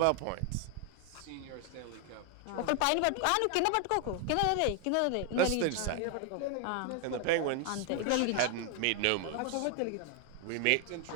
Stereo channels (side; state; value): both; different; correlation 0.00